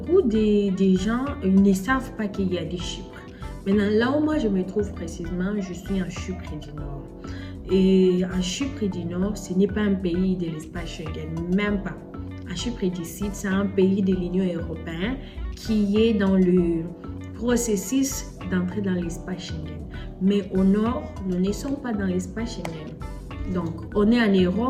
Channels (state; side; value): identical; both; correlation 1.00